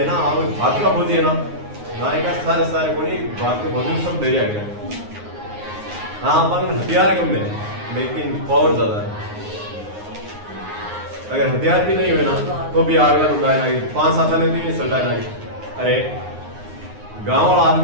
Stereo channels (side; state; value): left; late; 9.6 ms